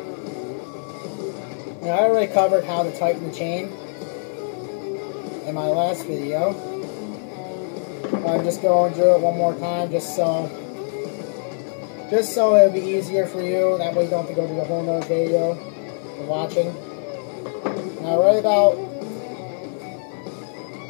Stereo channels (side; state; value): right; silent; digital silence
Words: And I already covered how to tighten the chain in my last video. I'm just going through it one more time just so it'll be easier for you. That way you don't have to go through the whole nother video you're watching. Now right about